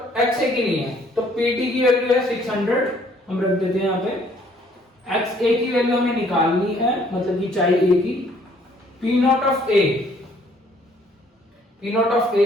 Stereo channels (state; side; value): normal; both; correlation 0.62